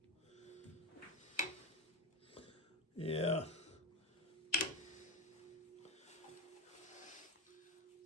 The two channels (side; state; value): both; normal; correlation 0.16